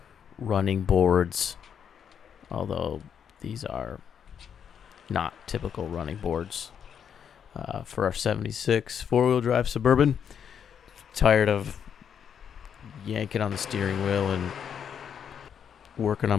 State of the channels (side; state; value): right; quieter; 8.0 dB